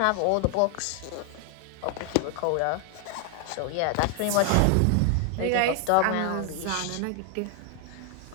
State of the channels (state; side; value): different; both; correlation 0.00